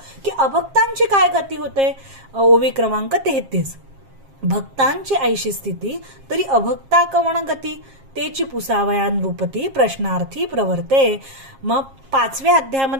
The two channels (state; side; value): late; left; 7.4 ms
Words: की अभक्तांची काय गती होते. ओवी क्रमांक 33, भक्तांची ऐशी स्थिती तरी अभक्ता कवण गती, तेची पुसावयान रूपती प्रश्नार्थी प्रवर्ते. मग 5व्या